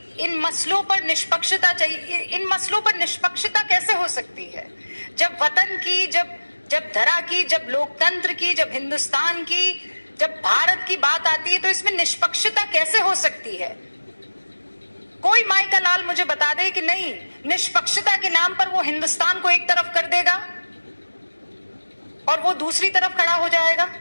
इन मसलों पर निष्पक्षता चाहिए, इन मसलों पर निष्पक्षता कैसे हो सकती है जब वतन की, जब धरा की, जब लोकतंत्र की, जब हिंदुस्तान की, जब भारत की बात आती है तो इसमें निष्पक्षता कैसे हो सकती है? कोई माई का लाल मुझे बता दे कि नहीं, निष्पक्षता के नाम पर वो हिंदुस्तान को एक तरफ कर देगा और वो दूसरी तरफ खड़ा हो जाएगा।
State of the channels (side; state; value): both; inverted; correlation -1.00